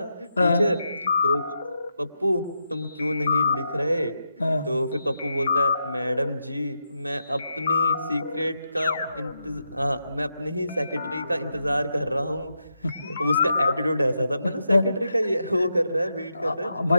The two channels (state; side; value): inverted; both; correlation -0.85